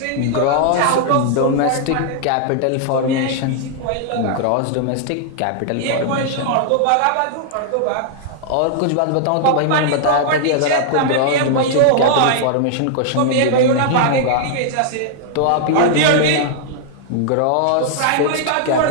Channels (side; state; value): both; different; correlation -0.01